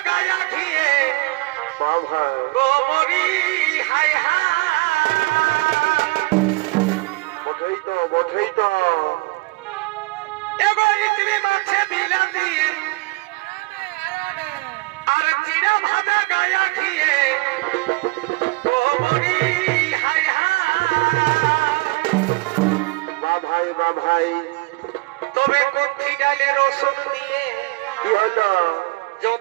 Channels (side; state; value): left; quieter; 25.0 dB